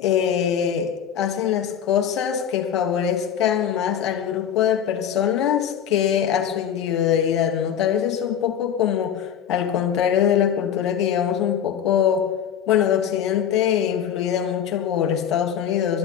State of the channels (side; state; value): right; quieter; 8.9 dB